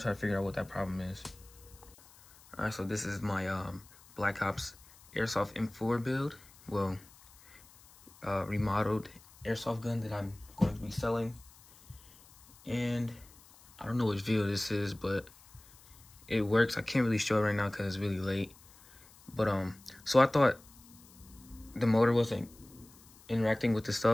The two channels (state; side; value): noise; left; hiss, 24 dB below the sound